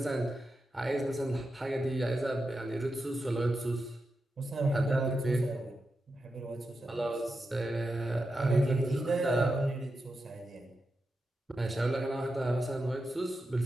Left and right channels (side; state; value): both; normal; correlation 0.89